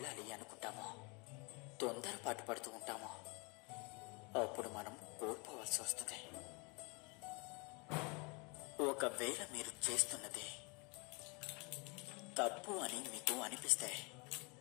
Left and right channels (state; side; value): quieter; right; 30.6 dB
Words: అనుకుంటామో, తొందరపాటు పడుతూ ఉంటామో, అప్పుడు మనం కోల్పోవాల్సి వస్తుంది. ఒకవేళ మీరు చేస్తున్నది తప్పు అని మీకు అనిపిస్తే